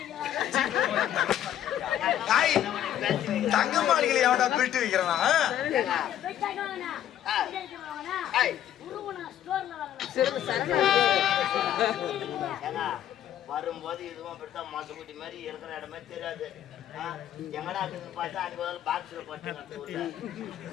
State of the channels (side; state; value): right; quieter; 11.2 dB